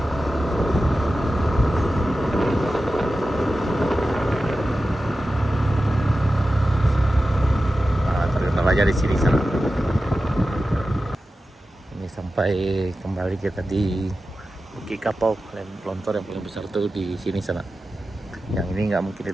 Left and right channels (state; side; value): normal; both; correlation 0.93